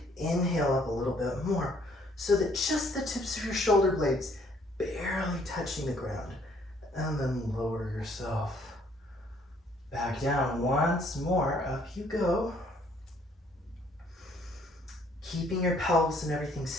inhale up a little bit more so that just the tips of your shoulder blades barely touching the ground. And then lower yourself back down once more. Up you go. Keeping your pelvis and everything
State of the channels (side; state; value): both; normal; correlation 0.63